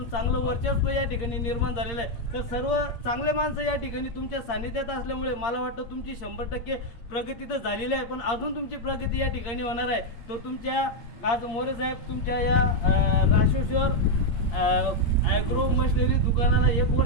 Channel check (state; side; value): late; right; 8.6 ms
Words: चांगलं वर्चस्व या ठिकाणी निर्माण झालेलं आहे। तर सर्व चांगले माणसं या ठिकाणी तुमच्या सानिध्यात असल्यामुळे मला वाटतं तुमची 100% प्रगती तर झालेली आहे, पण अजून तुमची प्रगती या ठिकाणी होणार आहे। तर तुमच्या आज मोरे साहेब तुमच्या या राष्ट्रेश्वर ॲग्रो मशिनरी दुकानाला 1